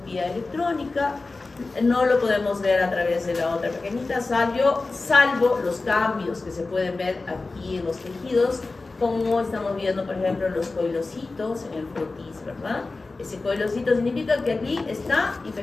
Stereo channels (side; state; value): right; quieter; 3.6 dB